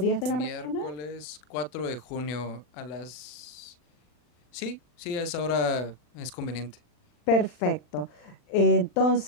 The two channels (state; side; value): late; right; 40 ms